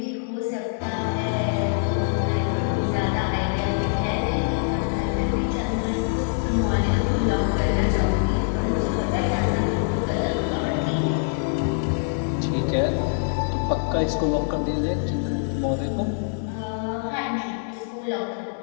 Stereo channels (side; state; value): right; silent; digital silence